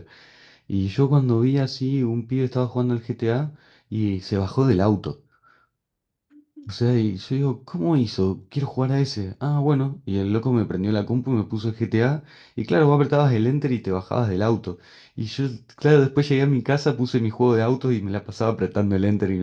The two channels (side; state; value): both; identical; correlation 1.00